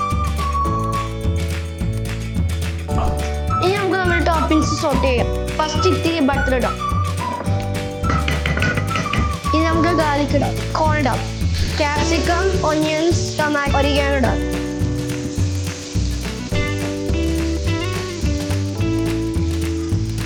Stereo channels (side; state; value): both; identical; correlation 1.00